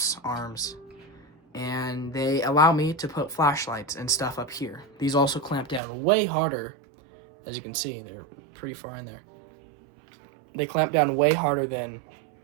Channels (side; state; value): left; drops out; at 5.8 s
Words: arms, and they allow me to put flashlights and stuff up here. These also clamp down way harder. As you can see, they're pretty far in there. They clamp down way harder than